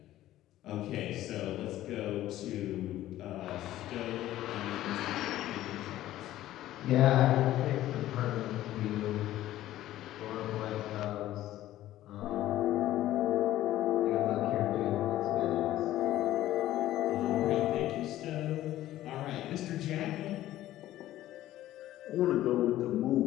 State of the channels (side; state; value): right; quieter; 14.2 dB